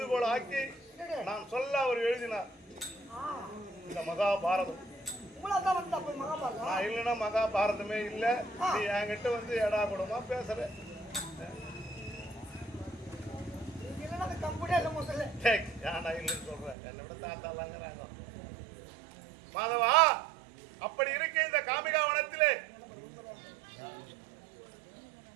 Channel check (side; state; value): left; drops out; at 16.8 s